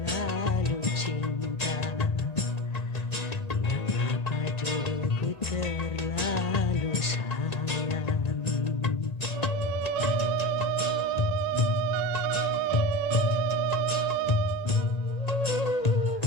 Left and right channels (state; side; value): late; right; 1.9 ms